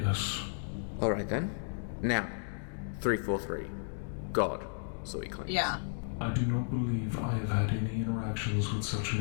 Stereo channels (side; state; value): right; silent; digital silence